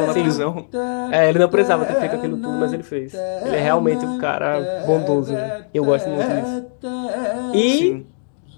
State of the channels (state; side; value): silent; right; digital silence